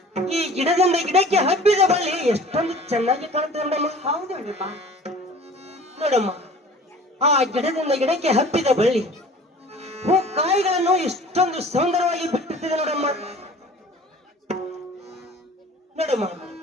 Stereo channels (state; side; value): normal; both; correlation 0.45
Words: ಈ ಗಿಡದಿಂದ ಗಿಡಕ್ಕೆ ಹಬ್ಬಿದ ಬಳ್ಳಿ ಎಷ್ಟೊಂದು ಚೆನ್ನಾಗಿ ಕಾಣುತ್ತೆ ನೋಡಮ್ಮ. ಹೌದು ಅಣ್ಣಮ್ಮ. ನೋಡಮ್ಮ, ಆ ಗಿಡದಿಂದ ಗಿಡಕ್ಕೆ ಹಬ್ಬಿದ ಬಳ್ಳಿ ಹೂ ಕಾಯಿಗಳನ್ನು ಎಷ್ಟೊಂದು ಸುಂದರವಾಗಿ ಬಿಟ್ಟಿರ್ತದೆ ನೋಡಮ್ಮ. ನೋಡಮ್ಮ,